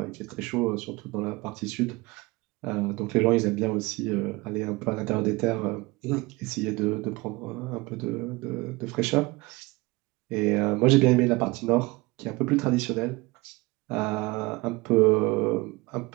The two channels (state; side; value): quieter; left; 23.2 dB